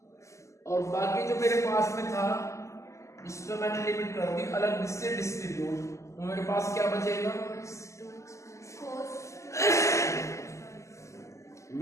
और बाकी जो मेरे पास में था उस पर मैंने लिमिट कर दी अलग से डिस्ट्रीब्यूट। तो मेरे पास क्या बचेगा,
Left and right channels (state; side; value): late; right; 0.14 ms